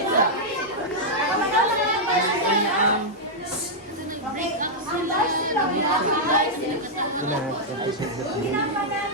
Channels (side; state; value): both; normal; correlation -0.06